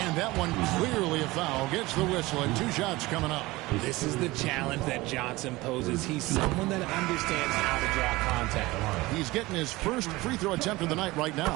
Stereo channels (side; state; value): left; quieter; 20.4 dB